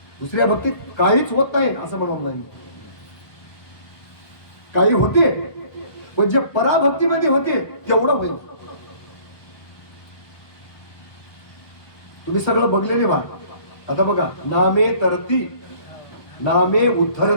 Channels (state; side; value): late; right; 1.3 ms